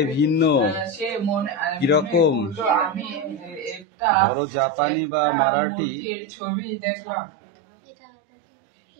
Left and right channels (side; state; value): left; drops out; at 3.9 s